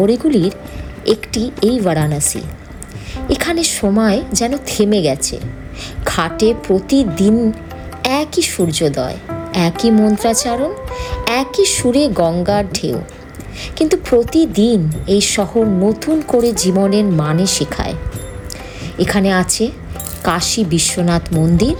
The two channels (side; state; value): both; identical; correlation 1.00